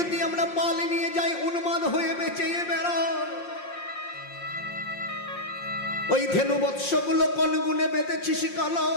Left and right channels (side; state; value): right; late; 5.6 ms